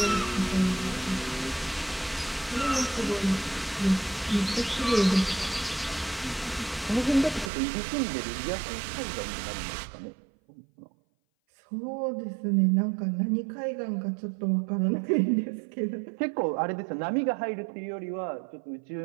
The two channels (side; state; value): left; drops out; at 7.5 s